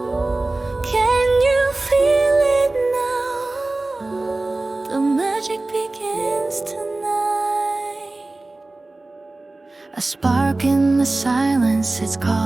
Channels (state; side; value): quieter; left; 3.0 dB